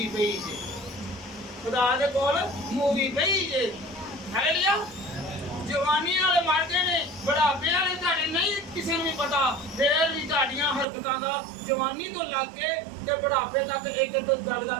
ਪਈ ਜੇ, ਖੁਦਾ ਦੇ ਕੋਲ ਮੂਵੀ ਪਈ ਜੇ। ਹਾਲੇਲੂਇਆ। ਜਵਾਨੀ ਵਾਲੇ ਮਰ ਗਏ ਨੇ, ਬੁਢਾਪੇ ਵਾਲੇ ਤੁਹਾਡੇ ਨਹੀਂ ਕਿਸੇ ਨੂੰ ਵੀ ਪਤਾ, ਫੇਰ ਵੀ ਤੁਹਾਡੀਆਂ ਹਰਕਤਾਂ ਦਾ ਜਵਾਨੀ ਤੋਂ ਲੱਗ ਕੇ ਤੇ ਬੁਢਾਪੇ ਤੱਕ ਇੱਕ ਇੱਕ ਗੱਲ ਦਾ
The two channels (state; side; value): drops out; left; at 10.9 s